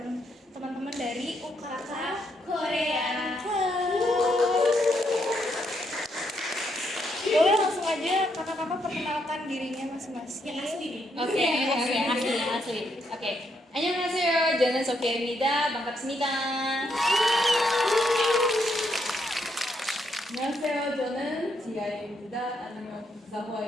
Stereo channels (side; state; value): both; normal; correlation 0.77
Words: teman-teman dari UKK Korean Club. Boleh langsung aja kakak-kakak perkenalkan dirinya masing-masing. Yang asli nih. Oke, asli. Oke. 안녕하세요. 저는 소피아입니다. 반갑습니다. 안녕하세요. 저는 지아입니다. 아니면